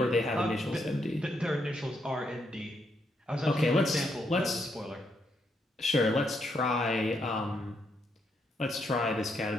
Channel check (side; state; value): both; normal; correlation 0.77